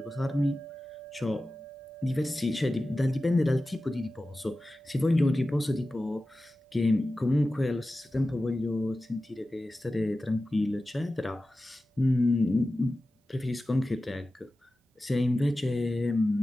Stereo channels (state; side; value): normal; both; correlation 0.95